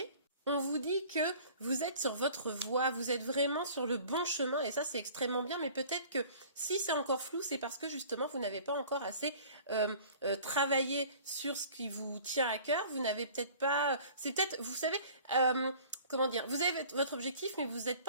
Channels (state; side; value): inverted; both; correlation -0.47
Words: on vous dit que vous êtes sur votre voie, vous êtes vraiment sur le bon chemin et ça c'est extrêmement bien, mais peut-être que si c'est encore flou, c'est parce que justement vous n'avez pas encore assez travaillé sur ce qui vous tient à cœur, vous n'avez peut-être pas, c'est peut-être, vous savez, comment dire, vous avez votre objectif, mais vous n'êtes